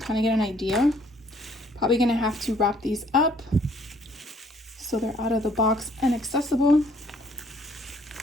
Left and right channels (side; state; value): both; normal; correlation 0.62